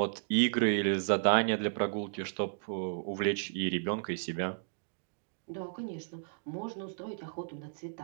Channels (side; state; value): left; silent; digital silence